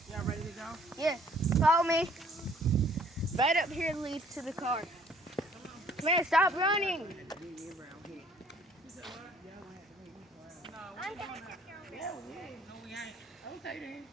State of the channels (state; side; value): normal; both; correlation 0.59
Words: Y'all ready to go? Yeah, follow me. Right up here leads to the car. Man, stop running. Yeah, we ain't. No, we ain't. Okay, then.